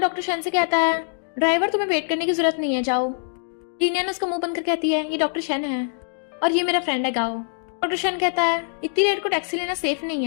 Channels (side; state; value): right; silent; 63 dB below the other